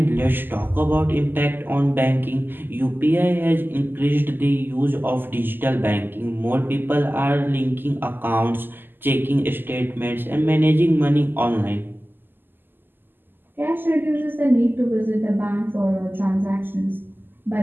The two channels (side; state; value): left; late; 0.094 ms